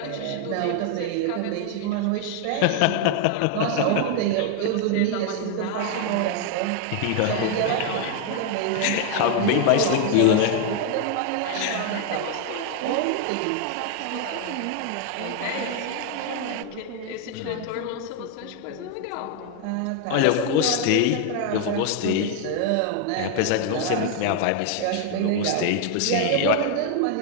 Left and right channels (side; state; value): both; different; correlation 0.00